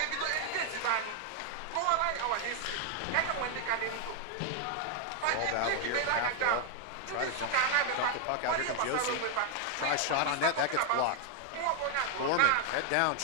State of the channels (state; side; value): different; both; correlation 0.00